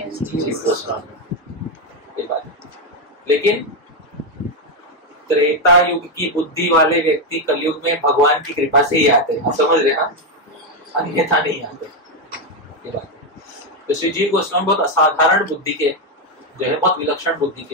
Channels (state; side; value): normal; both; correlation 0.05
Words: जीव गोस्वामी। ये बात है। लेकिन त्रेता युग की बुद्धि वाले व्यक्ति कलयुग में भगवान की कृपा से ही आते हैं, समझ रहे हैं? अन्यथा नहीं आते। ये बात है। तो श्री जीव गोस्वामी बहुत असाधारण बुद्धि के जो है, बहुत विलक्षण बुद्धि